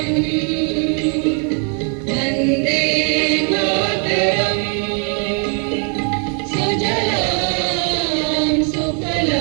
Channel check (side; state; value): left; quieter; 39.5 dB